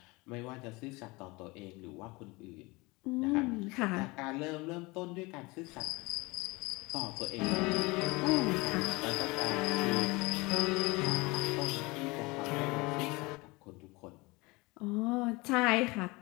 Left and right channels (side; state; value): right; quieter; 24.3 dB